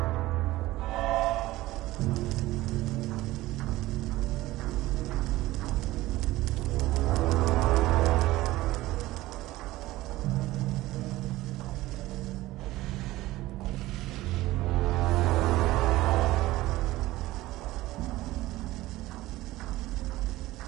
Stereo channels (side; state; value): left; quieter; 17.4 dB